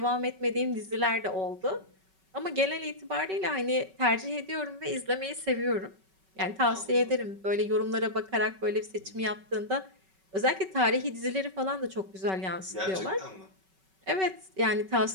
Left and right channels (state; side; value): late; left; 5.3 ms